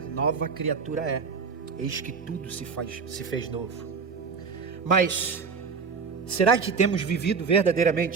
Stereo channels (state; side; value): quieter; left; 5.4 dB